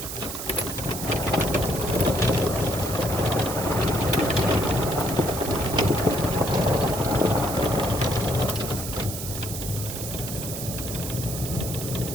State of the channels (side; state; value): right; noise; hiss, 7 dB below the sound